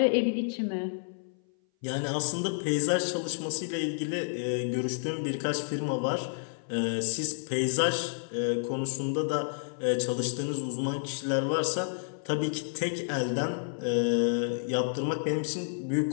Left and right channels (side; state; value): right; silent; 56 dB below the other